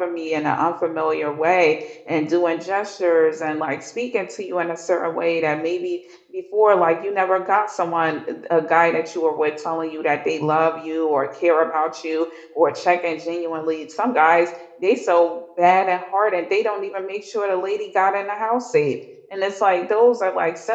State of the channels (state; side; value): identical; both; correlation 1.00